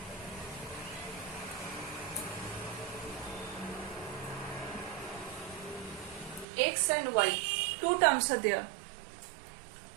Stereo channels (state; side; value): drops out; left; at 6.5 s